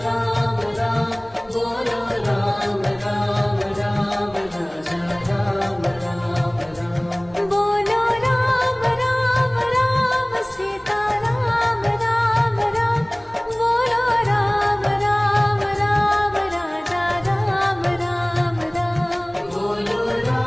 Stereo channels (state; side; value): noise; right; hum, 27 dB below the sound